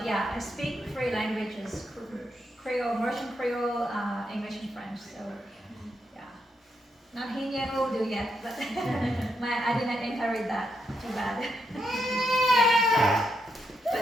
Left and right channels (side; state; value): both; normal; correlation 0.81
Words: I speak three languages: Creole, Mauritian Creole, English, and French. So yeah, not Hindi and Urdu yet, but I didn't inherit that. Too bad. Yeah.